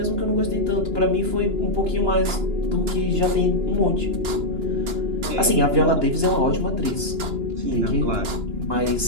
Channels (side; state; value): left; late; 2.9 ms